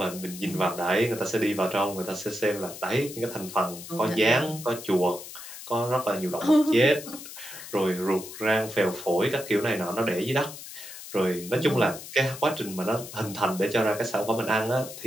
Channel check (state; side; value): noise; left; hiss, 13 dB below the sound